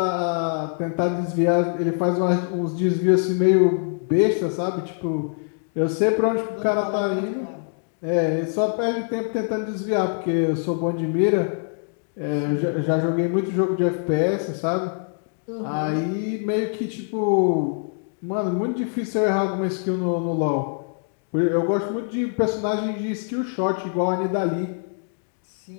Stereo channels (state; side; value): silent; right; 63 dB below the other